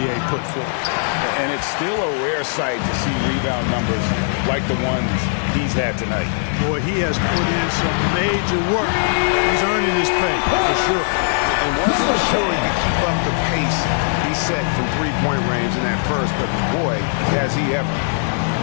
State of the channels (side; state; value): right; silent; digital silence